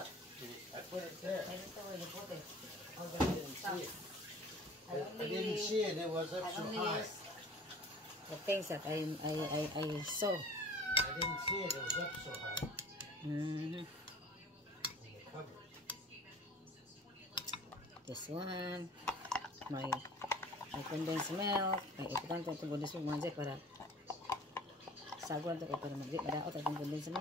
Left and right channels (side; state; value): both; normal; correlation 0.45